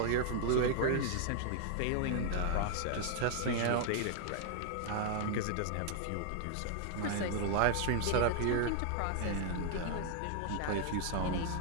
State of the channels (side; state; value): both; different; correlation 0.00